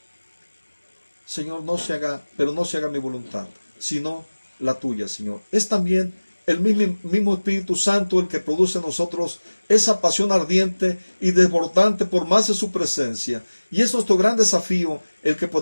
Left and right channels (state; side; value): inverted; both; correlation -1.00